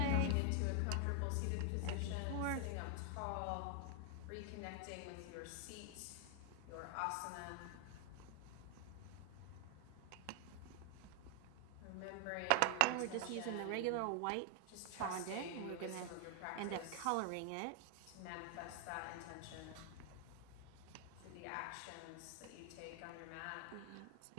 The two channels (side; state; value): both; different; correlation 0.00